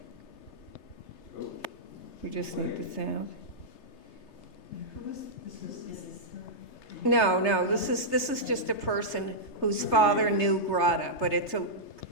We just need the sound. No, this is just a person whose father knew Grada, but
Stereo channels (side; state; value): right; late; 3.3 ms